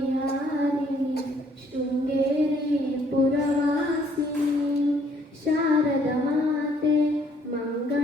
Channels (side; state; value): both; normal; correlation 0.64